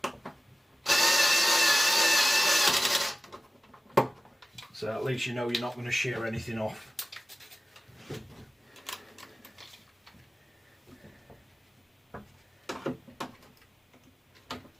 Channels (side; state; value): both; normal; correlation 0.96